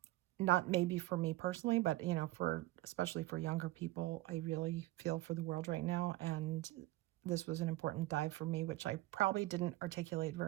Not maybe for me personally, but you know, especially for younger people, I really feel for the world right now, and this was an important dive for me, which I probably didn't articulate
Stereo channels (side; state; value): left; quieter; 17.7 dB